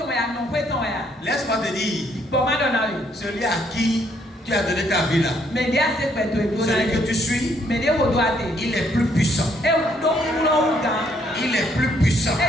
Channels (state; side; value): normal; both; correlation 0.69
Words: laisse-moi te dire, celui à qui tu as donné ta vie là, celui que tu suis, il est plus puissant. Il est plus puissant